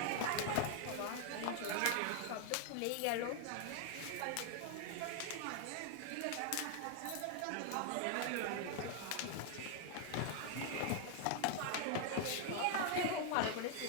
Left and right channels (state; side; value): different; both; correlation 0.00